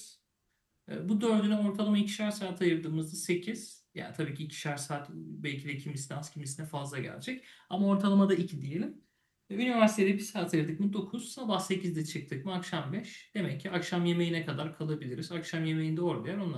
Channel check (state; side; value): identical; both; correlation 1.00